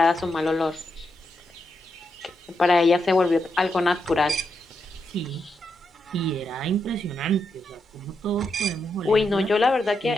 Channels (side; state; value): both; normal; correlation 0.83